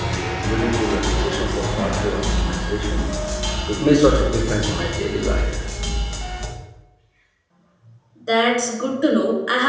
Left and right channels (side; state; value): both; identical; correlation 1.00